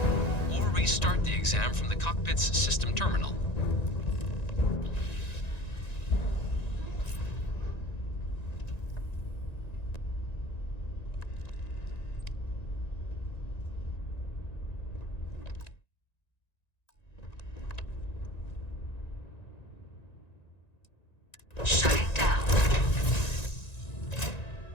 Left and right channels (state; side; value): late; right; 1.9 ms